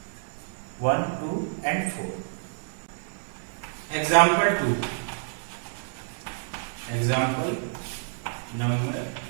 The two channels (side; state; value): left; silent; 59 dB below the other